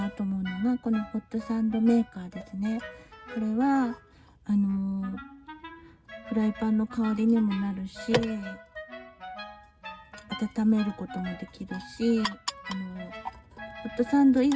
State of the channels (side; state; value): both; identical; correlation 1.00